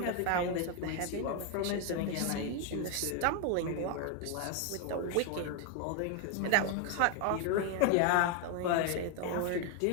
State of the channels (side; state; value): both; different; correlation 0.01